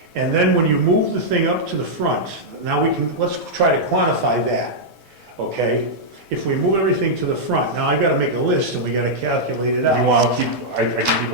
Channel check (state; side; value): normal; both; correlation -0.07